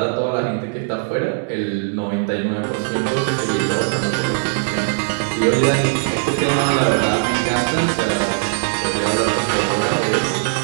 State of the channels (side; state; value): left; silent; 63 dB below the other